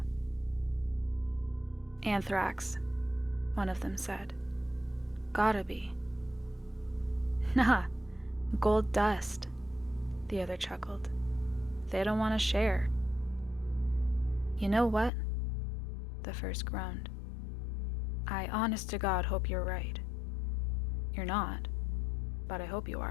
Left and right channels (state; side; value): drops out; right; at 15.1 s